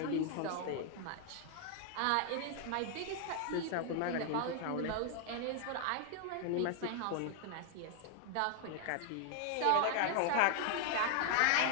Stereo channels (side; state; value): both; different; correlation 0.00